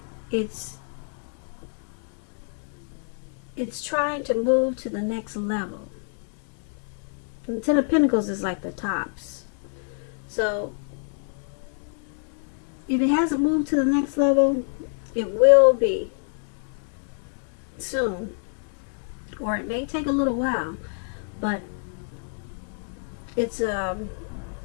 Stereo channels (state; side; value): silent; right; 60 dB below the other